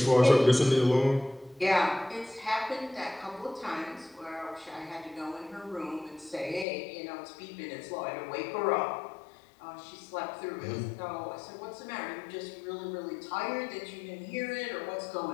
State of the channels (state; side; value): drops out; right; at 6.7 s